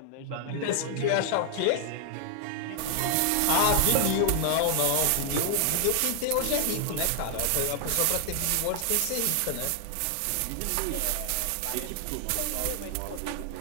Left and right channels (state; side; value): different; both; correlation 0.00